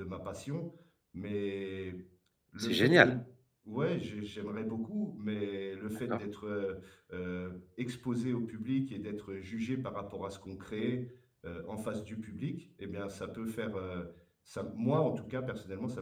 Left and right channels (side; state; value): both; identical; correlation 1.00